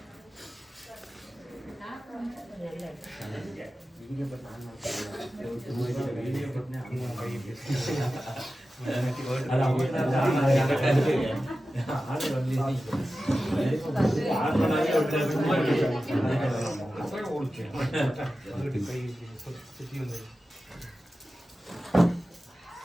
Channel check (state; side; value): normal; both; correlation 0.94